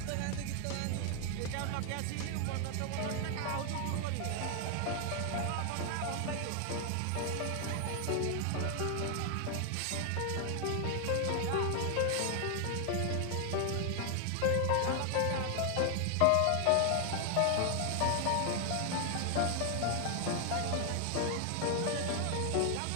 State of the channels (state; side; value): different; both; correlation 0.00